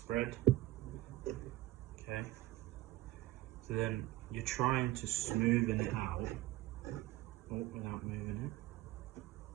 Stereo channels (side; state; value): left; quieter; 16.7 dB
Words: Okay, so then you're trying to smoothen it out without moving it.